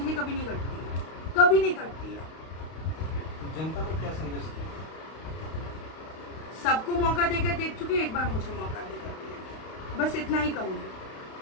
कभी नहीं कटती है, कभी नहीं कटती है। जनता को क्या संदेश दें? सबको मौका देकर देख चुके, एक बार मुझे मौका देकर दिया, बस इतना ही कहूँगी।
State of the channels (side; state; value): right; late; 32 ms